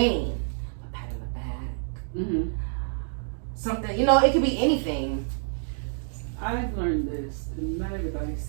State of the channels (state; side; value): silent; left; digital silence